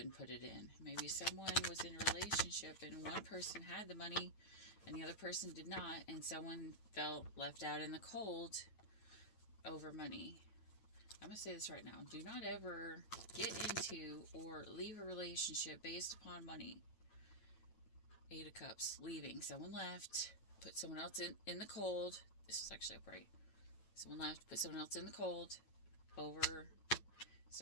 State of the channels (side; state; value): right; late; 9.0 ms